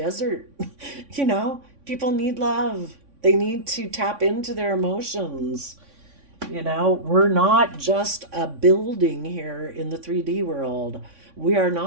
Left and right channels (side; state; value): left; late; 3.6 ms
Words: People need love. They need to tap into their emotions. We're not just a building here in the 3D world. We are